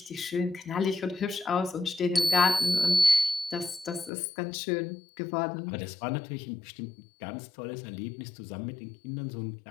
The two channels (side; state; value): right; drops out; at 4.1 s